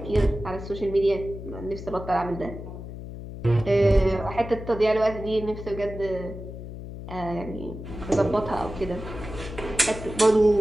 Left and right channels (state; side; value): noise; left; hum, 10 dB below the sound